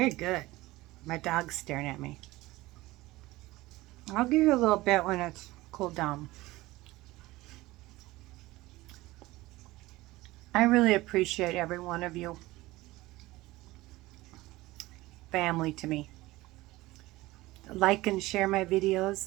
good. My dog's staring at me. I'll give you a little bit when it's cooled down. I really appreciate every one of you. Family to me. Like and share my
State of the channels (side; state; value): left; quieter; 19.0 dB